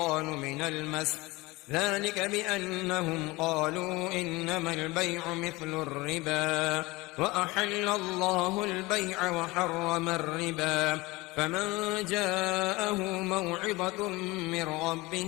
من المس ذلك بأنهم قالوا إنما البيع مثل الربا وأحل الله البيع وحرم الربا فمن جاءه موعظة من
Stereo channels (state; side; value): quieter; right; 22.2 dB